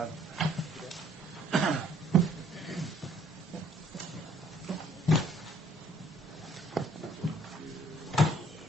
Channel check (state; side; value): normal; both; correlation 0.61